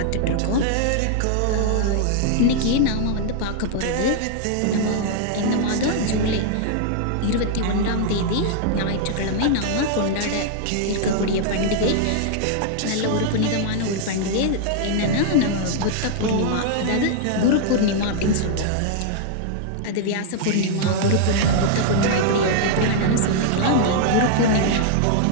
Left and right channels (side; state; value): both; different; correlation -0.01